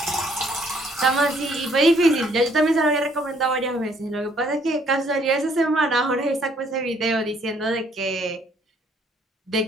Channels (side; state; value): both; normal; correlation 0.65